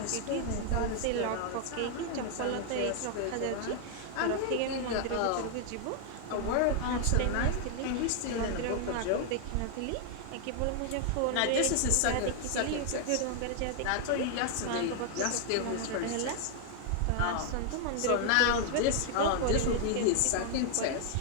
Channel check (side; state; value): both; different; correlation 0.00